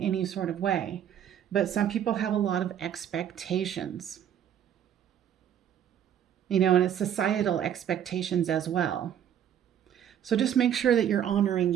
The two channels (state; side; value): quieter; left; 9.7 dB